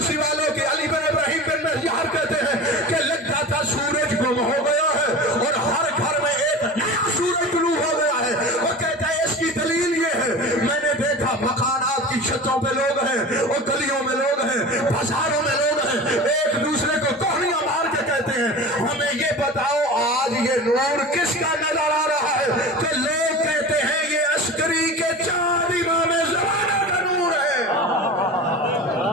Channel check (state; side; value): normal; both; correlation 0.33